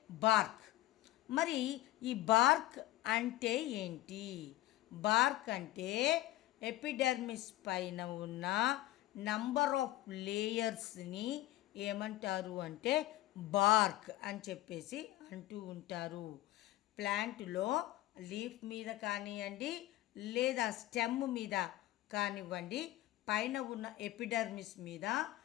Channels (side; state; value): right; quieter; 15.8 dB